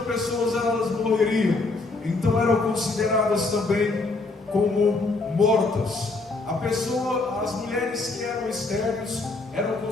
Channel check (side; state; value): right; quieter; 3.4 dB